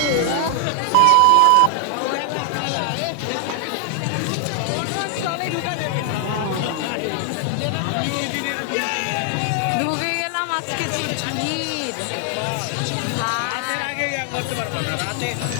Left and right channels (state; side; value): different; both; correlation 0.00